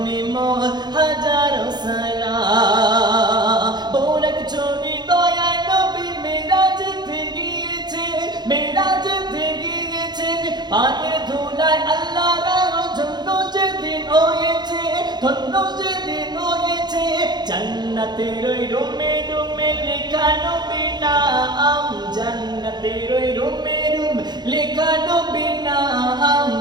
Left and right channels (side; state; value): left; late; 0.21 ms